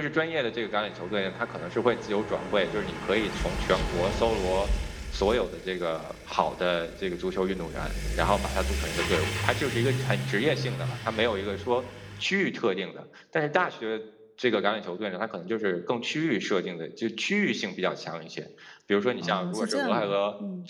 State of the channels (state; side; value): identical; both; correlation 1.00